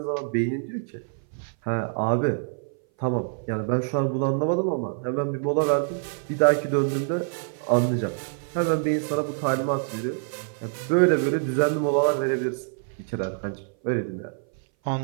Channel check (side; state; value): left; silent; 58 dB below the other